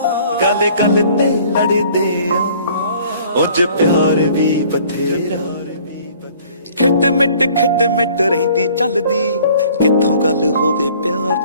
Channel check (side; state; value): both; inverted; correlation -0.54